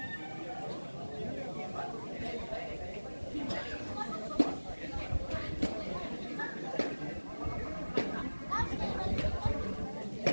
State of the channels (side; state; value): both; inverted; correlation -1.00